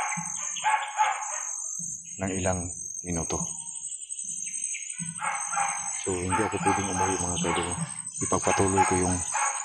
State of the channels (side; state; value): both; identical; correlation 1.00